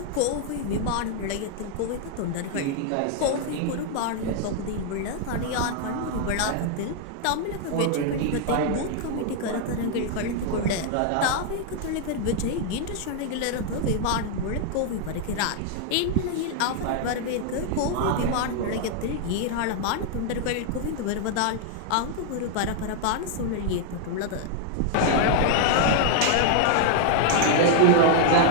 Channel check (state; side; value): different; both; correlation 0.00